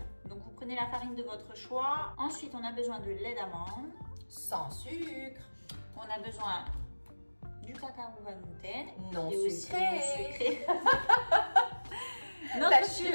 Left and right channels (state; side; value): inverted; both; correlation -1.00